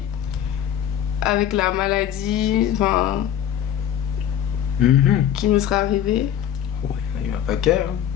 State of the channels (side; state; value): right; quieter; 10.3 dB